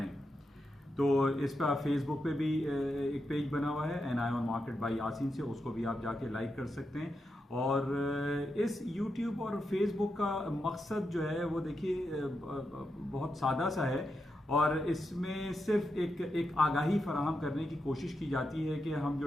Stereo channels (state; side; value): normal; both; correlation 0.86